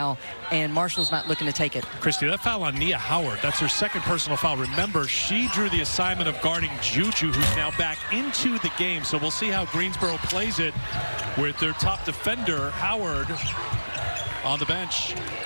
and Marshall's not looking to take it. Christy, that foul on Nia Howard, that's her 2nd personal foul. Remember, she drew the assignment of guarding Juju, who's now back into the game. So we'll see how Greensboro plays it with their top defender, Howard, on the bench.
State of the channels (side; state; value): both; inverted; correlation -1.00